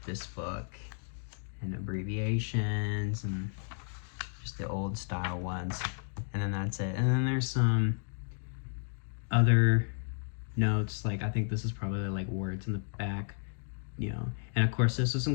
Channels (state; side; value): silent; right; digital silence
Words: this book, and abbreviations and just the old style ones, and then that's it. And then there's some other notes, like I think this is probably like words in the back, you know. And of course, this was